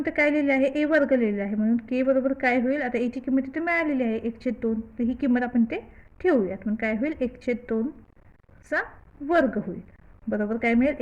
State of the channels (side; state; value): both; identical; correlation 1.00